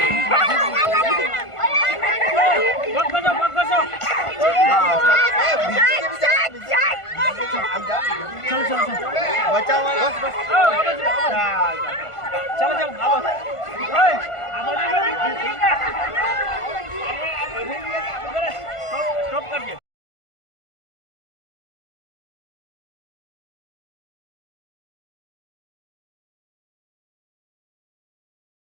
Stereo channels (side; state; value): right; late; 1.5 ms